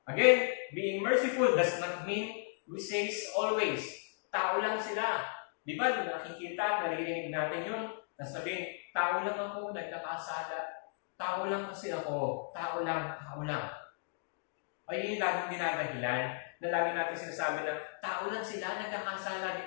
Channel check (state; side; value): silent; right; digital silence